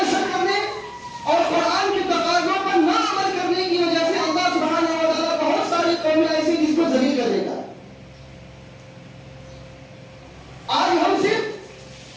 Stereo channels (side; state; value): both; identical; correlation 1.00